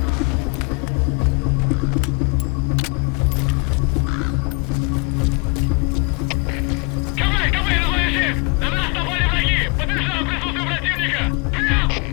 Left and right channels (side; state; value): right; quieter; 31.9 dB